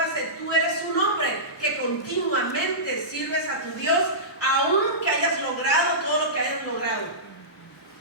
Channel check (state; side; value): normal; both; correlation -0.19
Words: tú eres un hombre que continuamente sirves a tu Dios, aunque hayas logrado todo lo que hayas logrado.